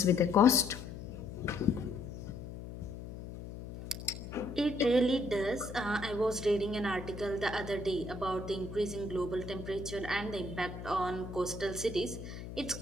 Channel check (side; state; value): left; noise; hum, 10 dB below the sound